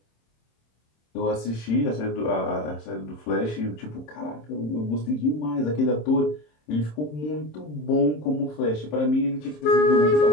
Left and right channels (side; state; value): right; late; 27 ms